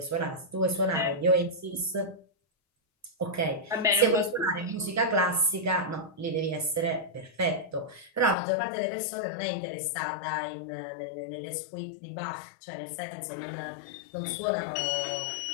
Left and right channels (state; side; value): drops out; right; at 8.3 s